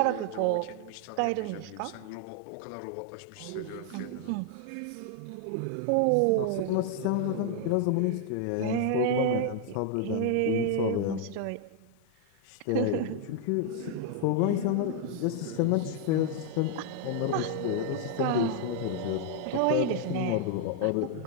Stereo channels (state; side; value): different; both; correlation 0.00